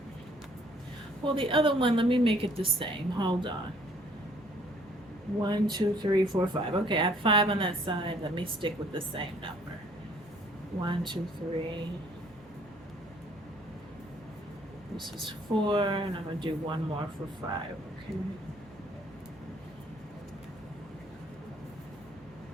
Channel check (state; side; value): normal; both; correlation 0.60